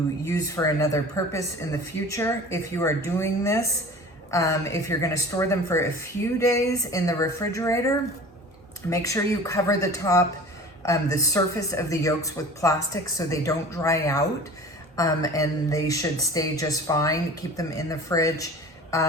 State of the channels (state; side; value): normal; both; correlation 0.41